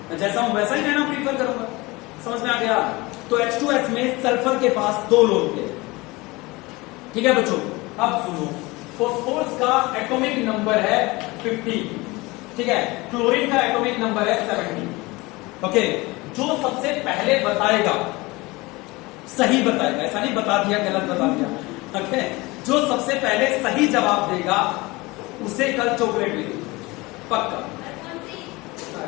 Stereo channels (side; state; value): right; quieter; 22.8 dB